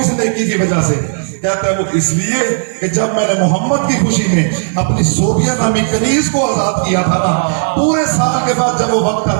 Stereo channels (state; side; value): silent; left; digital silence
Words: نیکی کی وجہ سے؟ کہتا ہے وہ اس لیے کہ جب میں نے محمد کی خوشی میں اپنی زوبیہ نامی کنیز کو آزاد کیا تھا نا، پورے سال کے بعد جب وہ وقت